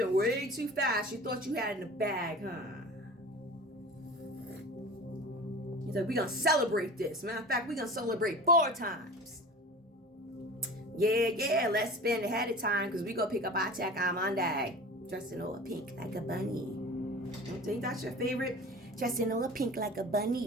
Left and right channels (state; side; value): normal; both; correlation 0.38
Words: way too fast. You thought you had it in the bag, huh? He's like, we're going to celebrate this. Matter of fact, we're going to celebrate 4 times. Yeah, let's spend ahead of time because we're going to pick up our check on Monday. Dressed in all pink like a bunny. Don't think that's your favorite? Dressed in all pink like a